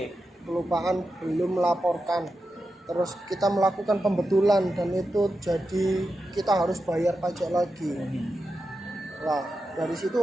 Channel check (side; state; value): both; normal; correlation 0.89